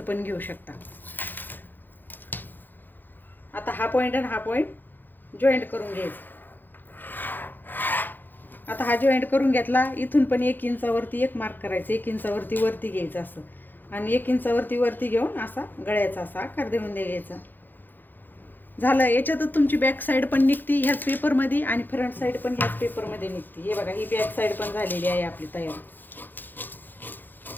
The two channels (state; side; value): late; right; 0.090 ms